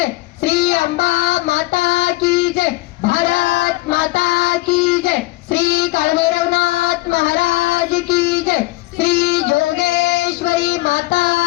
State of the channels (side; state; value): right; quieter; 20.6 dB